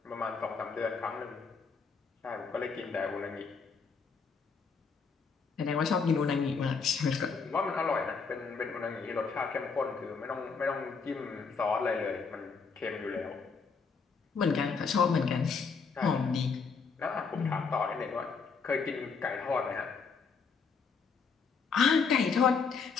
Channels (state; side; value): quieter; right; 5.3 dB